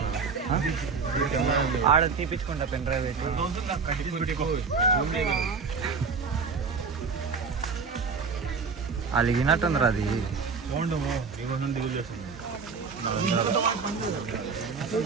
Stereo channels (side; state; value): left; quieter; 5.0 dB